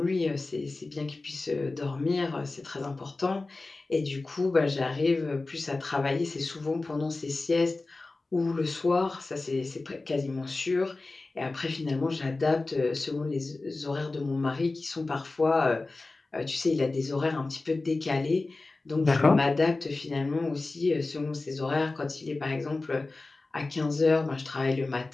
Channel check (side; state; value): right; quieter; 3.4 dB